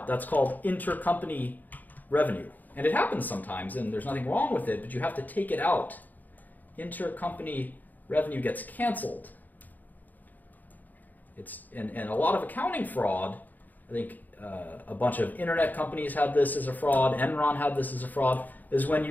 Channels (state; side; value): late; right; 0.083 ms